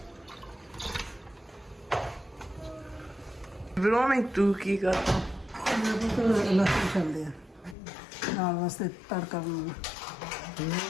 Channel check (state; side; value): drops out; right; at 7.8 s